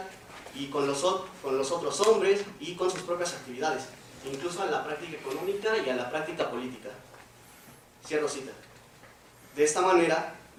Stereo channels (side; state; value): both; identical; correlation 1.00